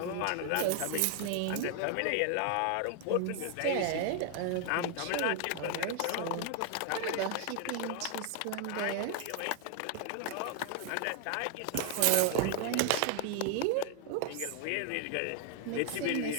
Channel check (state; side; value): different; both; correlation 0.00